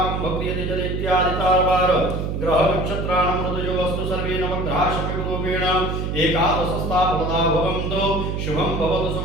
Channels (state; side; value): noise; right; hum, 2 dB below the sound